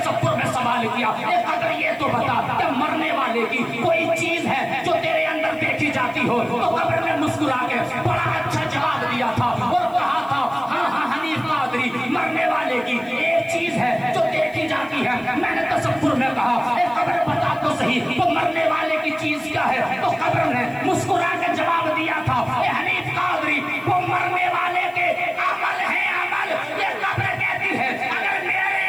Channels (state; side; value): noise; left; hiss, 28 dB below the sound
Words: میں سوال کیا، اے قبر یہ تو بتا کہ مرنے والے کی کوئی چیز ہے جو تیرے اندر دیکھی جاتی ہو؟ تو قبر نے مسکرا کے بڑا اچھا جواب دیا تھا اور کہا تھا ہاں ہاں حنیف قادری، مرنے والے کی ایک چیز ہے جو دیکھی جاتی ہے۔ میں نے تصور میں کہا اے قبر بتا تو صحیح وہ مرنے والے کی چیز کیا ہے؟ تو قبر نے مسکرا کے جواب دیا تھا اے حنیف قادری، وہ مرنے والے کے عمل ہے، عمل۔ یہ قبر کہتی ہے اگر میرے